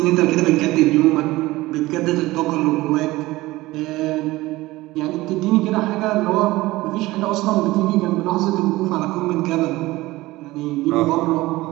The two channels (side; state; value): left; quieter; 18.9 dB